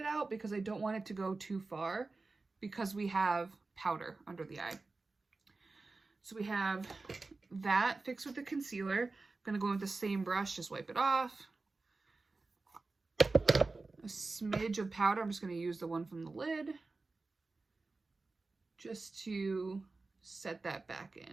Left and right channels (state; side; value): quieter; left; 3.6 dB